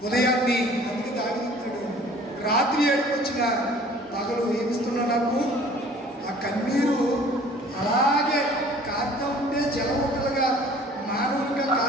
ఉదయాన్ని అందుకే దాగిస్తాడు. రాత్రి ఏడుకొచ్చిన పగలు ఏమిస్తున్నా నాకు ఆ కన్నీరు అలాగే కారుతూ ఉంటే జలముట్టలుగా మానవులుగా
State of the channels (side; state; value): both; normal; correlation 0.51